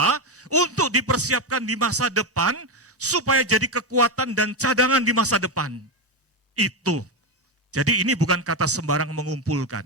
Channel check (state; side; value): normal; both; correlation 0.11